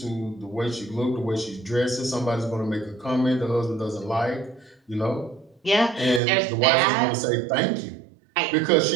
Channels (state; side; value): drops out; left; at 6.2 s